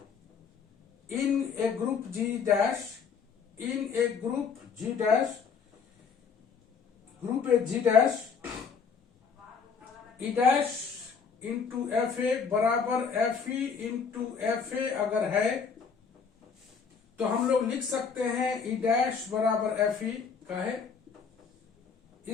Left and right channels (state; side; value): quieter; right; 5.9 dB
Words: in a group G dash, in a group G dash, group A G dash, E dash into F A बराबर F E into F A अगर है तो हम लोग लिख सकते हैं ई डैश बराबर एफ ई का है,